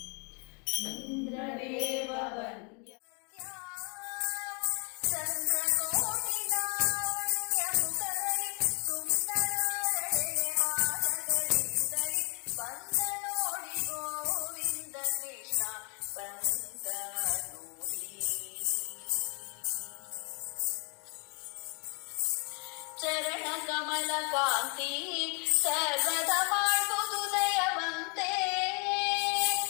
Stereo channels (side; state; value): right; quieter; 34.9 dB